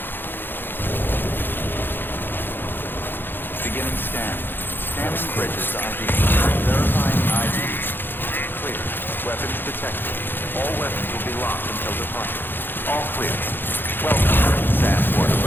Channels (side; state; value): right; late; 0.098 ms